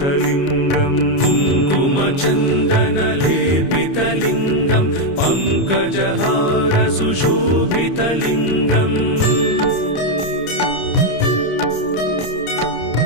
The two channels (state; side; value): late; right; 29 ms